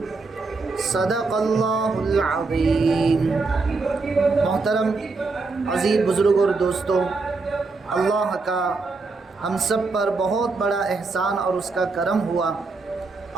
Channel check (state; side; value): quieter; left; 3.9 dB